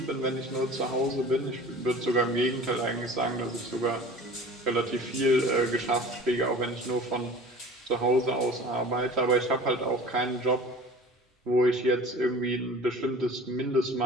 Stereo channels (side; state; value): both; normal; correlation 0.42